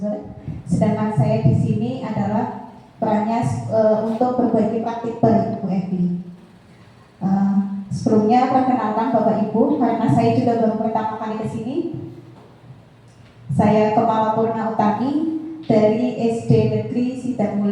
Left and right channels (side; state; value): both; identical; correlation 1.00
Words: Sedangkan saya di sini adalah perannya untuk berbagi praktik baik Bu Evi. Sebelumnya perkenalkan Bapak Ibu, karena saya juga baru pertama kali ke sini. Saya Kepala Purna Utami dari SD Negeri